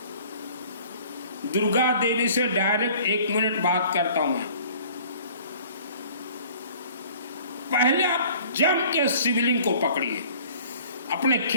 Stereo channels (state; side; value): inverted; both; correlation -0.51